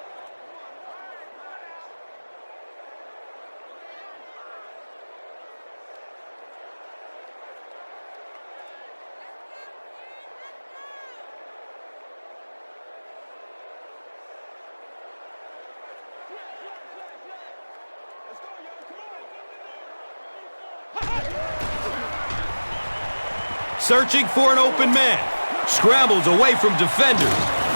Searching for an open man. Scrambles away from defenders.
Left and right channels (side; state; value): both; inverted; correlation -1.00